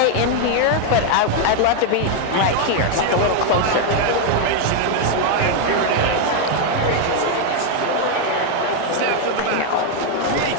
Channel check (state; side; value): different; both; correlation 0.01